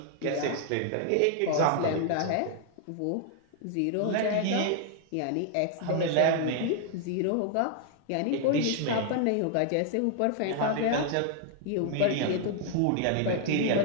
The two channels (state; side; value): different; both; correlation 0.00